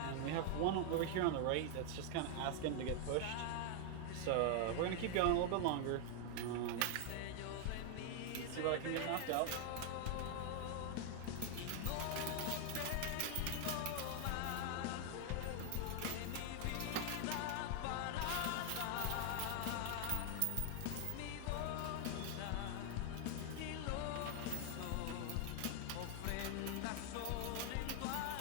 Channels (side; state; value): both; different; correlation 0.00